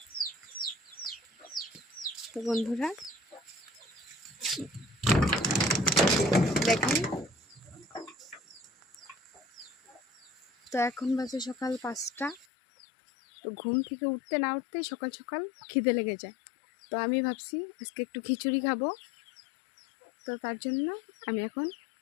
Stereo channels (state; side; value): drops out; right; at 12.5 s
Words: তো বন্ধুরা দেখেন, তো এখন বাজে সকাল 5টা। তো ঘুম থেকে উঠতে না উঠতেই সকাল সকাল খিদে লেগে যায়। তো আমি ভাবছি আজকে একটু খিচুড়ি খাবো। তো তার জন্য আমি এখন